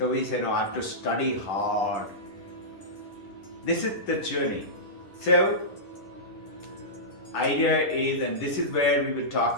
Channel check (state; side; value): late; right; 10 ms